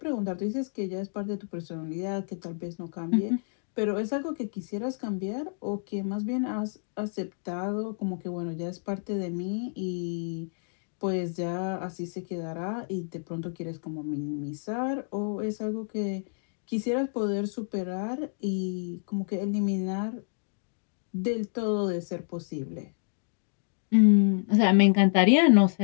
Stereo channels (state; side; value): silent; right; digital silence